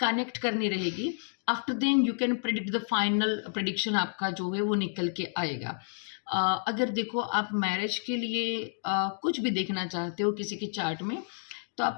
करनी रहेगी। After then you can predict the final prediction आपका जो है वो निकल के आएगा। अगर देखो आप मैरिज के लिए कुछ भी देखना चाहते हो किसी के चार्ट में, तो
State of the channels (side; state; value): right; silent; digital silence